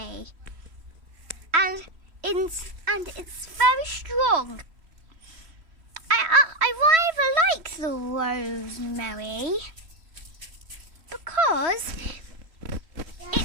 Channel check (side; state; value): left; late; 3.1 ms